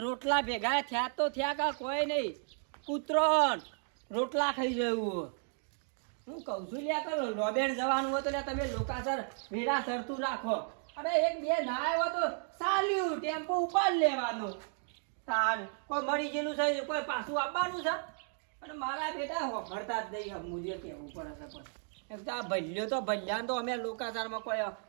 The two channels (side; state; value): left; silent; 55 dB below the other